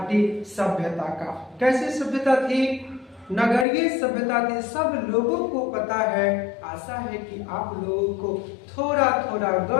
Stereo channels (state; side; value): drops out; right; at 3.7 s